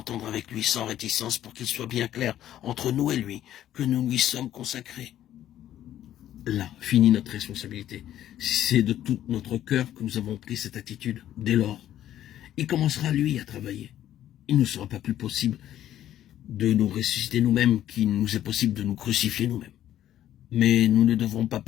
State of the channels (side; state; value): right; quieter; 12.0 dB